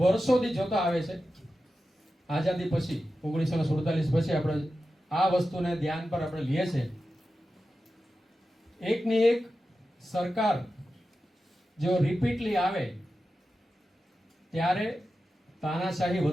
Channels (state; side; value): normal; both; correlation 0.92